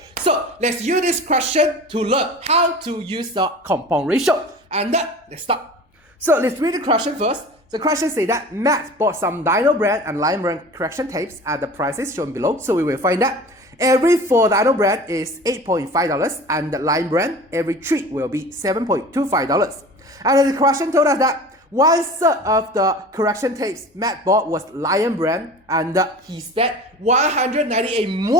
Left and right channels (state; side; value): normal; both; correlation 0.38